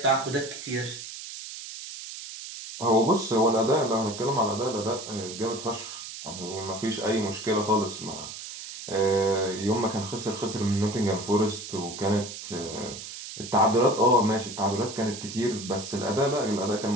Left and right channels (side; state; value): right; noise; hiss, 10 dB below the sound